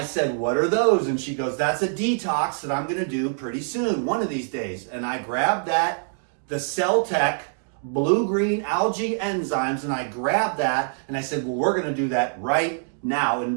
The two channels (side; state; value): left; silent; digital silence